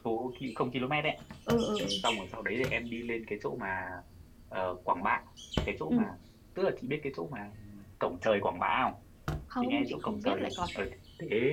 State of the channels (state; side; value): identical; both; correlation 1.00